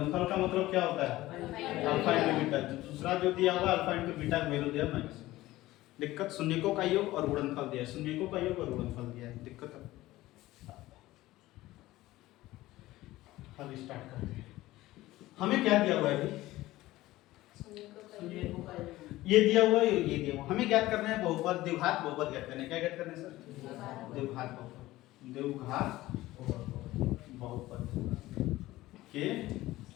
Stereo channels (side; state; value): right; quieter; 17.1 dB